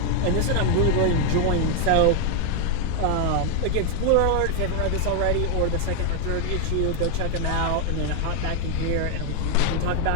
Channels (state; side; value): different; both; correlation 0.01